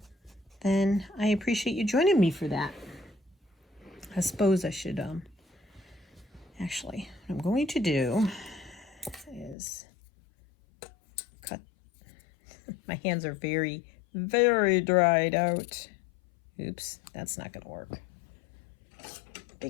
then I appreciate you joining me for that. I suppose I should, actually, what I'm going to do is cut. My hands are very, very dried out. Oops, that's not going to work.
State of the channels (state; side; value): drops out; right; at 9.6 s